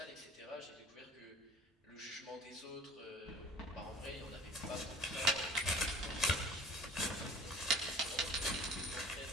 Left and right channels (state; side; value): normal; both; correlation 0.46